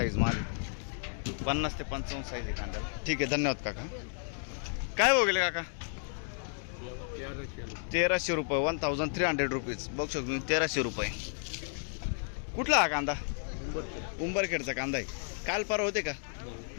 माल। 50 ते 55 साईज आहे कांद्याला, ठीक आहे। धन्यवाद काका। काय भाव गेले काका? 1300 रुपये। 1300 रुपीज बघू शकतो मी। 1300 रुपये। कुठला हा कांदा? उंबरखेडचा कांदा आहे। काल परवा होते का?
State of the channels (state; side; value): silent; right; 56 dB below the other